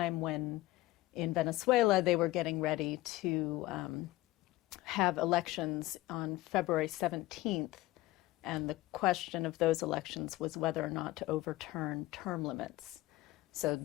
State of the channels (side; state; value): right; quieter; 17.7 dB